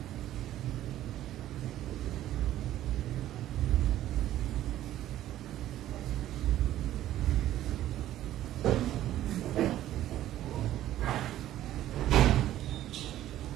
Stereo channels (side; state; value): left; quieter; 13.3 dB